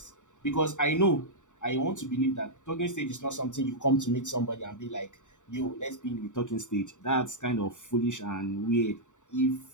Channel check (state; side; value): late; right; 0.85 ms